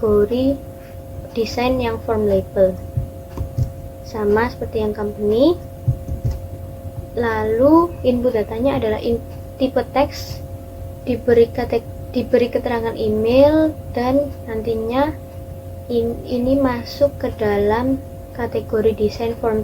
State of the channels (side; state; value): both; identical; correlation 1.00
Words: desain yang form label, sama seperti yang company. Lalu input datanya adalah tipe teks, diberi keterangan email, dan nantinya ini masuk ke dalam kategori desain form